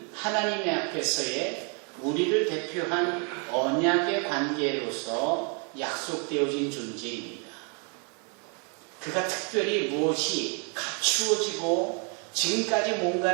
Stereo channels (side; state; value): left; quieter; 37.7 dB